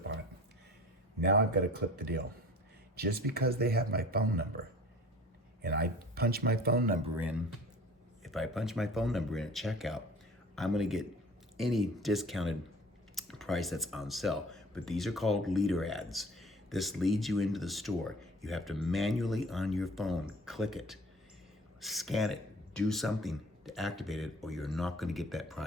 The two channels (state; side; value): normal; both; correlation 0.45